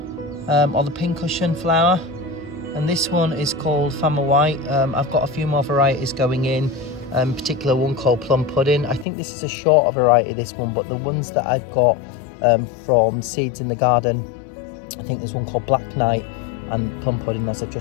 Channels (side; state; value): right; drops out; at 9.1 s